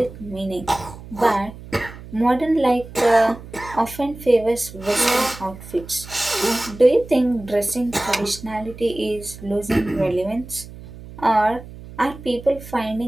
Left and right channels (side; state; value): right; noise; hum, 15 dB below the sound